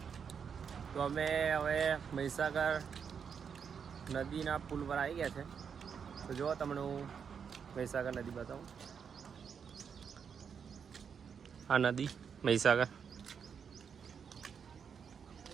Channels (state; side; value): quieter; left; 6.9 dB